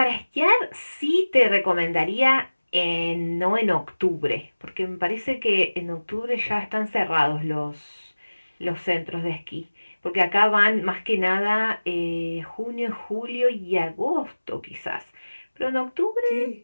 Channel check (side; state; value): both; inverted; correlation -1.00